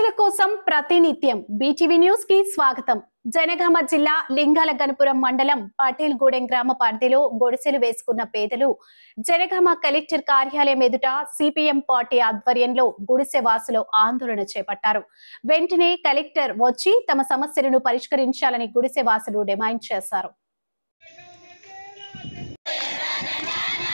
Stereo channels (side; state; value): both; inverted; correlation -1.00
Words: కోసం ప్రతినిత్యం బీటీవీ న్యూస్ కి స్వాగతం. జనగామ జిల్లా లింగాల గణపురం మండలం పటేల్ గూడెం గ్రామ పరిధిలో గుడిసెలు వేసుకున్న పేదలు జనగామ కలెక్టర్ కార్యాలయం ఎదుట సిపిఎం పార్టీ ఆధ్వర్యంలో గుడిసె వాసులు ఆందోళన చేపట్టారు. వెంటనే కలెక్టర్ వచ్చి తమ సమస్యలను పరిష్కరించాలని గుడిసె వాసులు డిమాండ్ చేశారు.